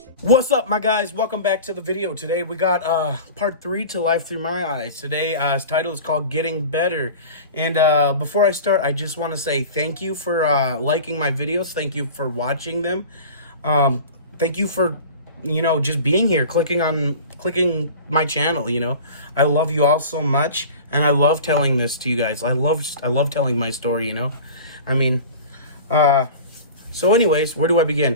What's up, my guys? Welcome back to the video. Today we got part 3 to Life Through My Eyes. Today's title is called Getting Better. And before I start, I just want to say thank you for liking my videos. Thank you for watching them. Thank you for, just being here, clicking my channel. I love you all so much, and I love telling this to you guys. I love telling my story. So anyways, where do I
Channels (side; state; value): both; inverted; correlation -0.37